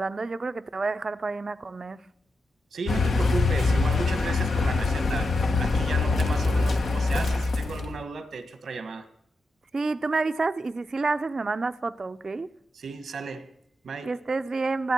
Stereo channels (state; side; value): normal; both; correlation 0.87